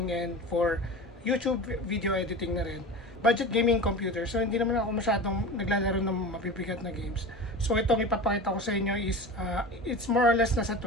and for YouTube video editing na rin. Budget gaming computer. So, hindi naman ako masyadong naglalaro ng mabibigat na games. So, itong ipapakita ko sa inyo is, it's more or less nasa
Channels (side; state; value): both; normal; correlation 0.31